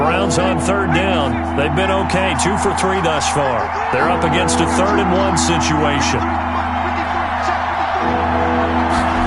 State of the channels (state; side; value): identical; both; correlation 1.00